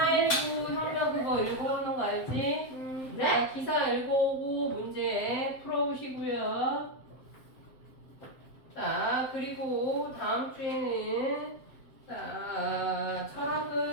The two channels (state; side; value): late; right; 8.0 ms